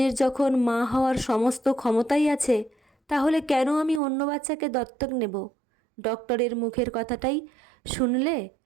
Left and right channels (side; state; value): left; drops out; at 4.0 s